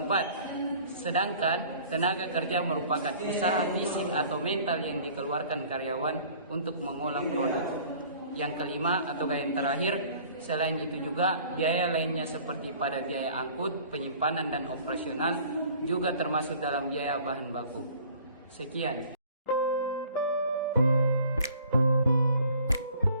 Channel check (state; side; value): inverted; both; correlation -0.51